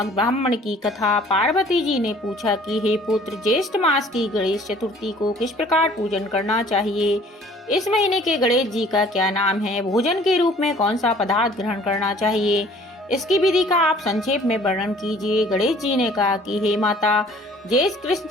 ब्राह्मण की कथा। पार्वती जी ने पूछा कि हे पुत्र, ज्येष्ठ मास की गणेश चतुर्थी को किस प्रकार पूजन करना चाहिए। इस महीने के गणेश जी का क्या नाम है। भोजन के रूप में कौन सा पदार्थ ग्रहण करना चाहिए, इसकी विधि का आप संक्षेप में वर्णन कीजिए। गणेश जी ने कहा कि हे माता, ज्येष्ठ कृष्ण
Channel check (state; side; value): normal; both; correlation 0.53